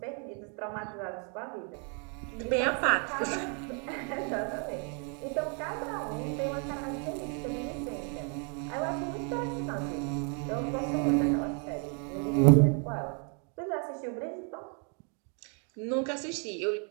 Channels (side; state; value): left; quieter; 39.4 dB